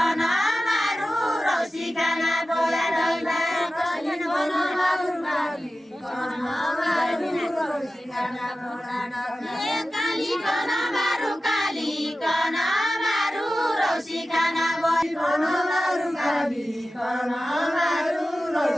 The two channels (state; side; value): normal; both; correlation 0.94